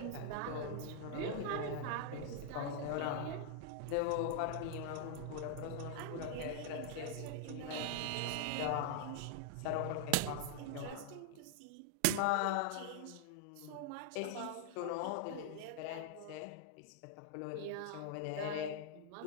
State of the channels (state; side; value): different; both; correlation 0.00